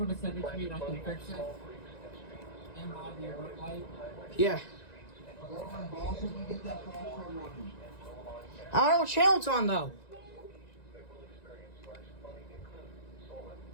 to send it to me and I can fix it. And buy the alert light. Yeah. I don't know what channel it's on though.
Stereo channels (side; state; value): right; late; 1.9 ms